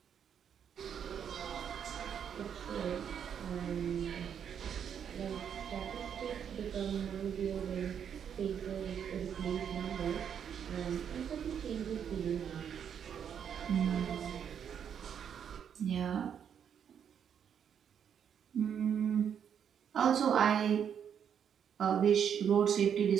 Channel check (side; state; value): left; quieter; 8.2 dB